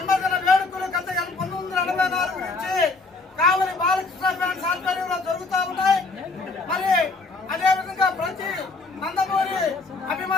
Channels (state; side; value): quieter; right; 3.7 dB